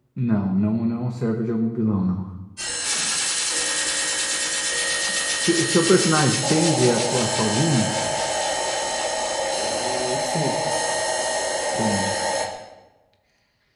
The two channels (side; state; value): both; identical; correlation 1.00